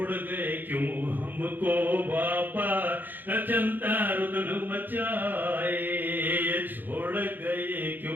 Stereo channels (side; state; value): left; late; 0.089 ms